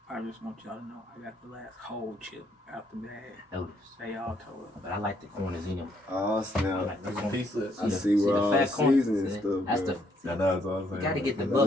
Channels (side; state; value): both; normal; correlation 0.71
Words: I just want y'all to know I got the last whole chip out the bag. Notice. They all told us. But I like the corners in them. Oh I snap! like the That's a corners. piece of. I see where all the fat corner? seasoning See? stuff. That's bro. the. I know that's all I'm saying. You gotta get the